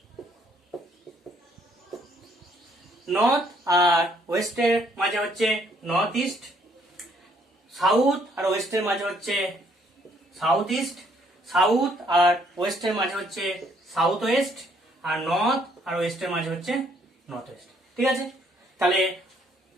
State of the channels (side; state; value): both; normal; correlation 0.66